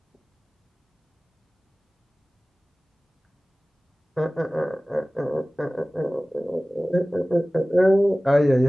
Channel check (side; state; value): both; normal; correlation 0.98